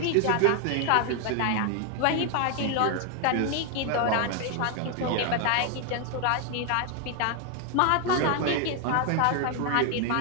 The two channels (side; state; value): both; different; correlation 0.01